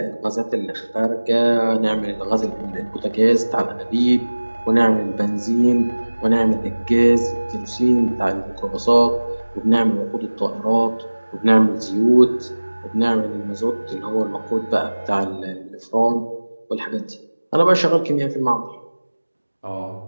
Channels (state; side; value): inverted; both; correlation -1.00